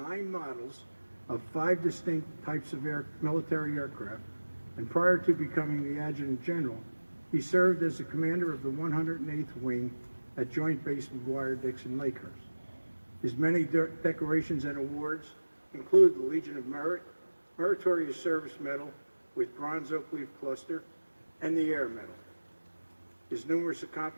models of 5 distinct types of military aircraft, and prior to becoming the Adjutant General, he served as the commander of the 108th Wing at Joint Base McGuire-Dixon Lakehurst. His many decorations and awards include the Legion of Merit, Meritorious Service Medal with Bronze Oak Leaf Cluster, and the Air Medal. His numerous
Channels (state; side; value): inverted; both; correlation -1.00